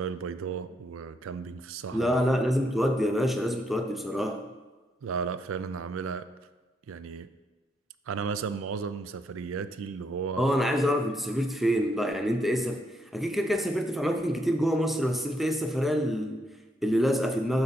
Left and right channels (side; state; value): both; normal; correlation 0.76